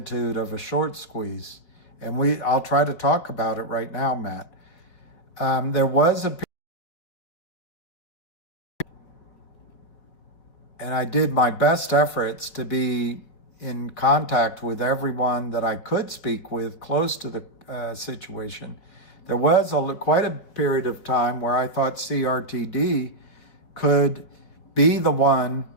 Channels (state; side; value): late; right; 4.7 ms